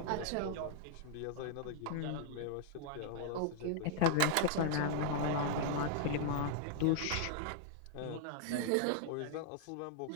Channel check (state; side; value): different; both; correlation -0.01